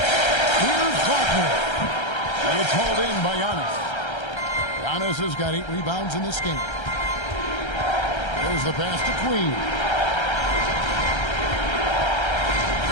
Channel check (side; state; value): right; late; 1.3 ms